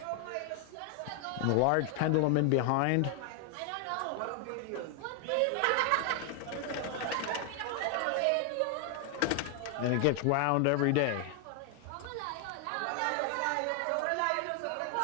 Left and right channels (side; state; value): both; different; correlation 0.00